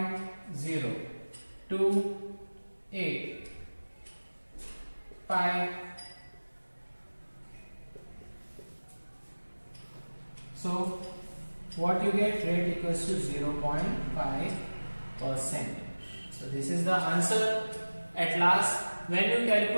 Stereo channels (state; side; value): inverted; both; correlation -1.00